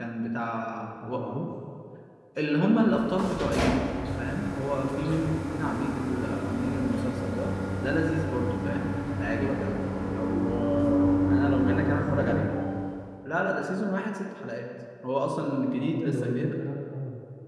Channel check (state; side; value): identical; both; correlation 1.00